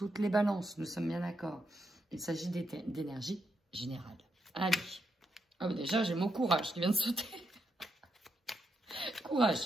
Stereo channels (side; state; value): both; normal; correlation 0.81